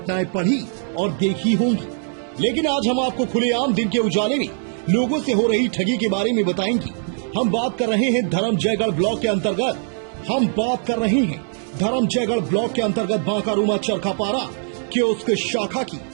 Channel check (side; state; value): left; silent; digital silence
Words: पढ़ी और देखी होंगी, लेकिन आज हम आपको खुलेआम दिन के उजाले में लोगों से हो रही ठगी के बारे में बताएंगे। हम बात कर रहे हैं धर्मजयगढ़ ब्लॉक के अंतर्गत बांकारुमा चरखापारा कियोस्क शाखा की।